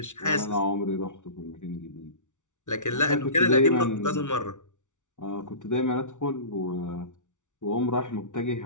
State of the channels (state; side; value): late; right; 0.86 ms